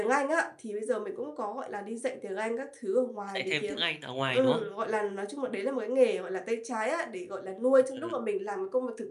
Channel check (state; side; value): identical; both; correlation 1.00